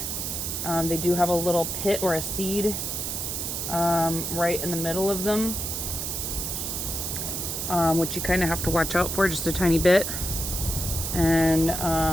They do have a little pit or a seed right in the middle of them, which you kind of have to watch out for just a tiny bit. And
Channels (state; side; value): noise; right; hiss, 3 dB below the sound